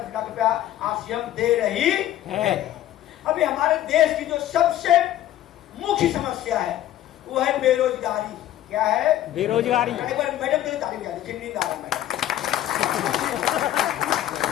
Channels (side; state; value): right; quieter; 13.0 dB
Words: लाख रुपया आरसीएम दे रही है। अभी हमारे देश की जो सबसे मुख्य समस्या है वो है बेरोजगारी। क्या है? बेरोजगारी। एक बार मैडम के लिए तारीफ किया, नींद आ रहा है मैडम।